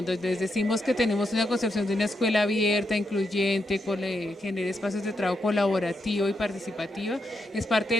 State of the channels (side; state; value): both; normal; correlation 0.82